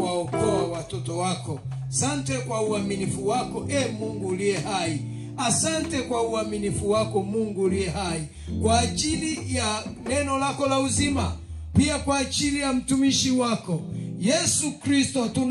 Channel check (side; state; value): both; identical; correlation 1.00